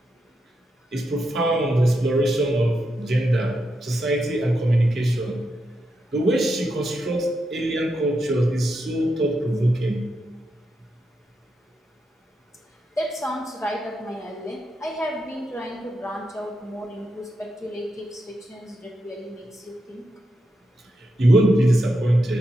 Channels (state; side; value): normal; both; correlation 0.85